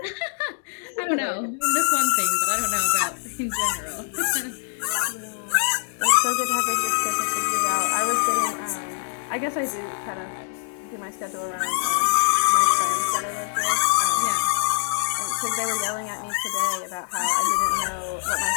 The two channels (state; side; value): silent; right; digital silence